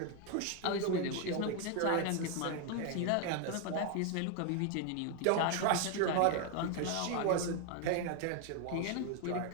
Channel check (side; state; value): both; different; correlation 0.01